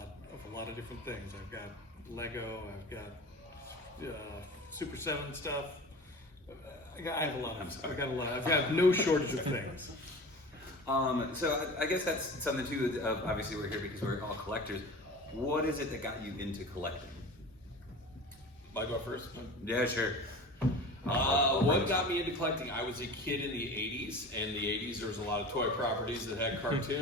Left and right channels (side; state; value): both; normal; correlation 0.36